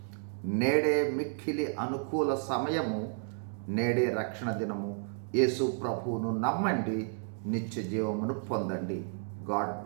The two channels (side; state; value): left; silent; 57 dB below the other